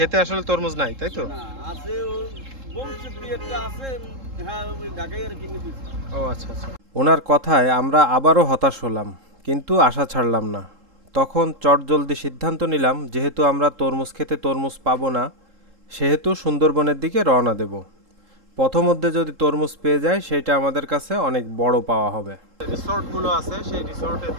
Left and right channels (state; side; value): late; left; 3.7 ms